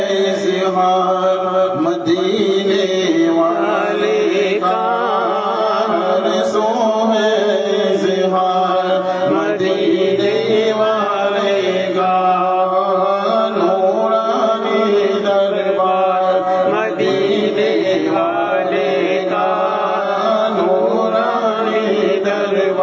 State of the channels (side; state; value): both; identical; correlation 1.00